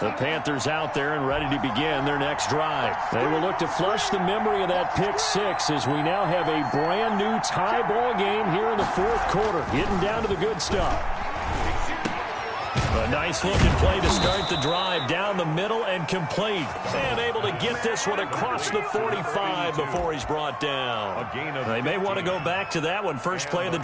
The Panthers out there and ready to begin their next drive. They will look to flush the memory of that pick 6 as we now have a brand new tie ball game here in the 4th quarter. Getting down to the good stuff. A nice looking play to start the drive down the middle and complete. And able to get this one across the 45 before he's brought down. They may want to go back to that one. First play of the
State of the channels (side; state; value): both; identical; correlation 1.00